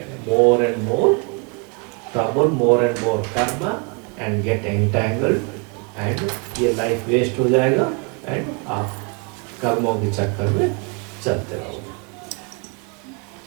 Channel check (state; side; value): quieter; left; 33.6 dB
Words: more and more trouble, more and more karma, and get entangled, and ये life waste हो जाएगा, and आप कर्मों के चक्कर में चलते रहोगे.